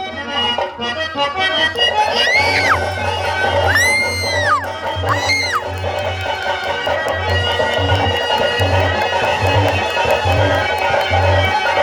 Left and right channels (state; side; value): identical; both; correlation 1.00